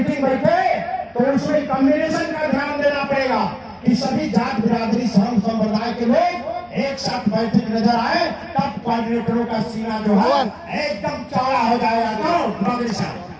बैठे तो उसमें कम्युनिकेशन का ध्यान देना पड़ेगा कि सभी जात बिरादरी धर्म संप्रदाय के लोग एक साथ बैठे नजर आए, तब कोऑर्डिनेटरों का सीना जो है एकदम चौड़ा हो जाएगा। तो बागड़ी साहब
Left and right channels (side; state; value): both; identical; correlation 1.00